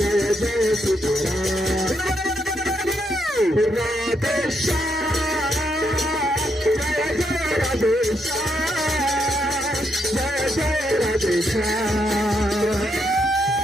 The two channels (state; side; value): normal; both; correlation 0.78